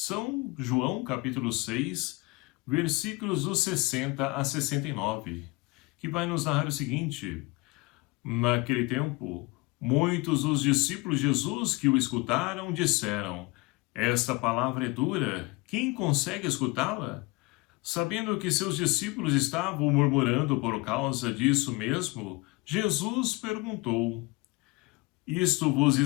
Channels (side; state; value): right; quieter; 24.6 dB